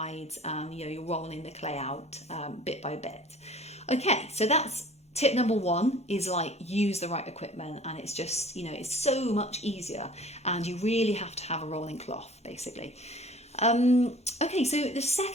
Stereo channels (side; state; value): both; normal; correlation 0.48